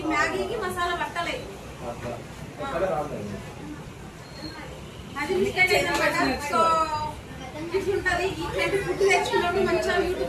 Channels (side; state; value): both; identical; correlation 1.00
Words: మ్యాగీకి మసాలా పట్టలేదు. అది మిస్టేక్ అయిందన్నమాట. సో ఇట్లుంటది. ఇట్లాంటి ఫుడ్ తెచ్చుకున్నప్పుడు మంచిగా